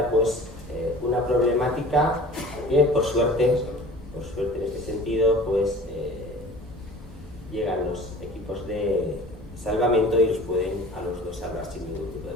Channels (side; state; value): both; normal; correlation 0.42